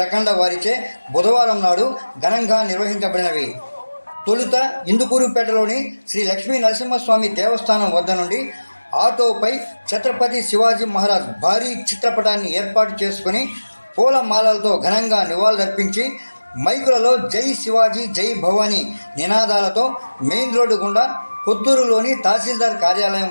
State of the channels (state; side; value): inverted; both; correlation -1.00